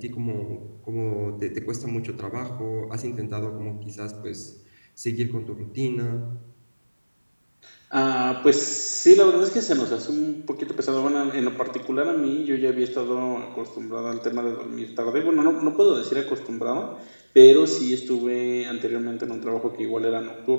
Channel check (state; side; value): inverted; both; correlation -1.00